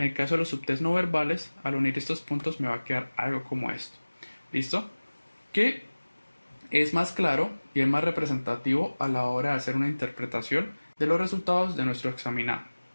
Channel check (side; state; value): both; inverted; correlation -1.00